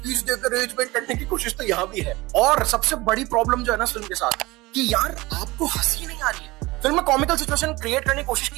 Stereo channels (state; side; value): quieter; left; 21.3 dB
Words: देकर रेज वेट करने की कोशिश तो यहाँ भी है। और सबसे बड़ी प्रॉब्लम जो है ना फिल्म के साथ, कि यार आपको हंसी नहीं आ रही है। फिल्म में कॉमिकल सिचुएशन क्रिएट करने की कोशिश